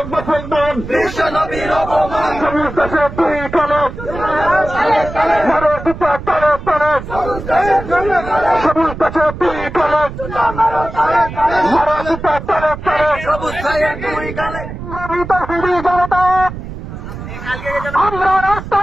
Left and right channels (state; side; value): noise; right; rumble, 10 dB below the sound